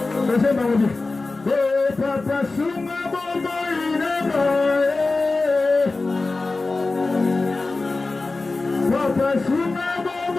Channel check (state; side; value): quieter; right; 3.5 dB